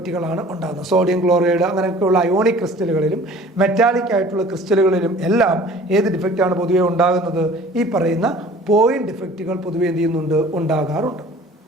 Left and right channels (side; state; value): both; normal; correlation 0.47